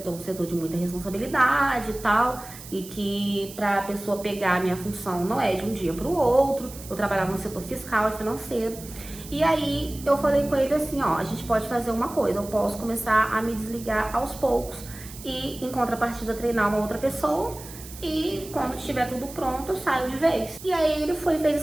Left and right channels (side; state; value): right; noise; hiss, 15 dB below the sound